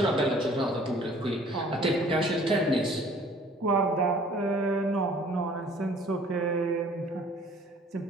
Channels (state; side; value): normal; both; correlation 0.54